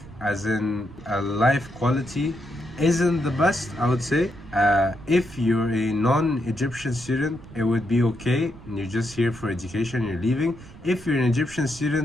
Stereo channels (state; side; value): noise; right; rumble, 18 dB below the sound